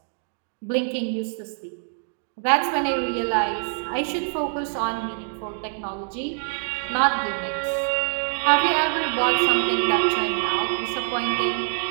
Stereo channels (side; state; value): left; silent; digital silence